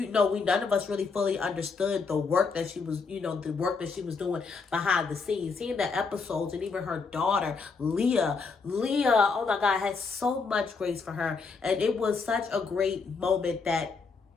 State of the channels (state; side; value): quieter; right; 4.7 dB